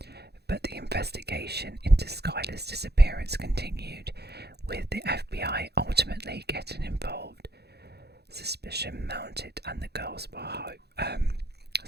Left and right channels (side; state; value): left; late; 0.48 ms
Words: but the investigation into Skylar's disappearance continued, with the FBI ultimately getting involved. Suspicion mounting